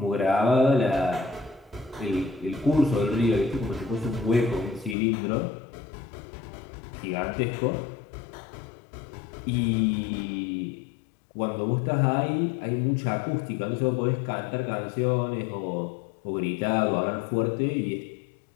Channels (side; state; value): right; drops out; at 5.0 s